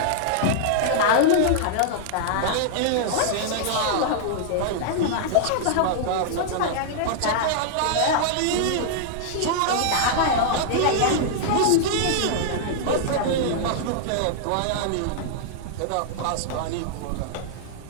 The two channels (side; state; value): both; different; correlation -0.01